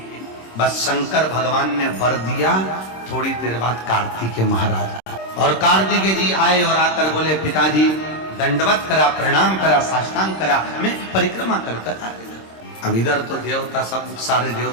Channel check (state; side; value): late; right; 26 ms